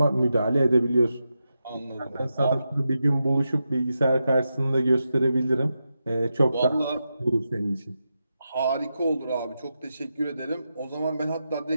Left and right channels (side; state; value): both; inverted; correlation -0.88